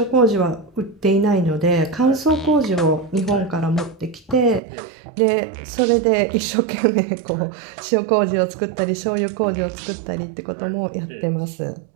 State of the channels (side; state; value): left; drops out; at 4.6 s